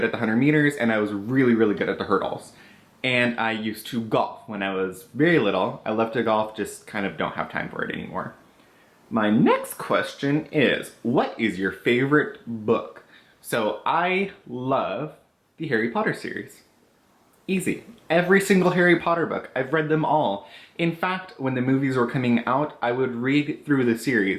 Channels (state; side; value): identical; both; correlation 1.00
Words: at the 100 meters, and I was really, really good at the hurdles. And I used to golf when I was very little. I love to golf, just kind of don't have time for it anymore. My next question is, what is your favorite book? So I love the Harry Potter series. Easy. Every single Harry Potter book. I've read them all. In fact, when the movies were coming out, I would read through the